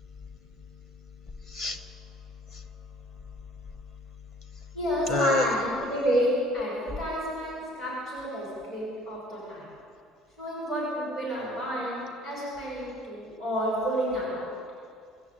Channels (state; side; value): normal; both; correlation 0.53